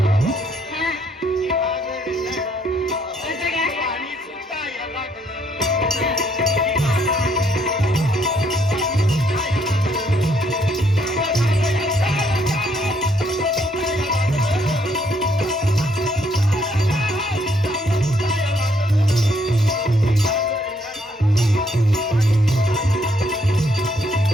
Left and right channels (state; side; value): normal; both; correlation 0.70